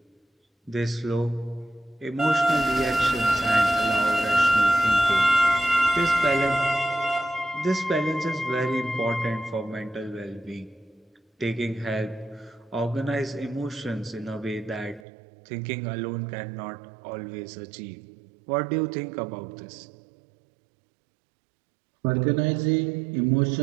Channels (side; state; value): left; drops out; at 15.1 s